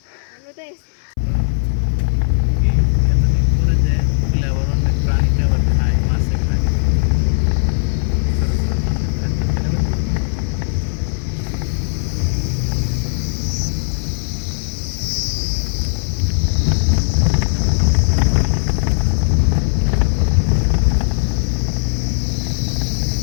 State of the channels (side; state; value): right; silent; 64 dB below the other